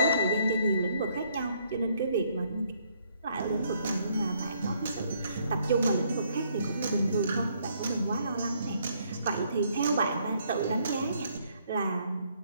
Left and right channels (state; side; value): inverted; both; correlation -0.69